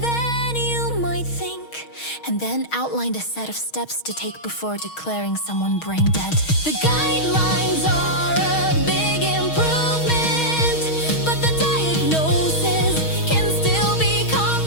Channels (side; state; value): right; late; 6.3 ms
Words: you might think, and then outlined a set of steps to take before declaring someone brain dead. The guidelines are a big improvement, but the diagnoses can still be